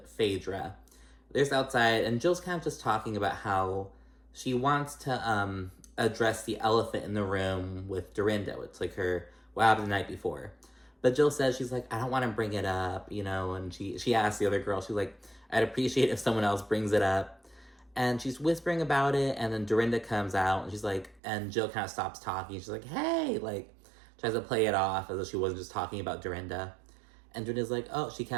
Phaedra. They're just outside, and Jill's kind of just talking about how she wants to address the elephant in the room with Dorinda. It's like what happened the night before. But Jill says, she's like, I don't want to bring it up, you know, and she asks the other girl, she's like, I'd appreciate if someone else brings it up. And she's whispering about it, and then Dorinda comes out, and she's like, and Jill kind of stops talking. She's like, hey, like, tries to play it off as though she wasn't just talking about Dorinda. And Dorinda's like, oh, she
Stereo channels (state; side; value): drops out; left; at 21.2 s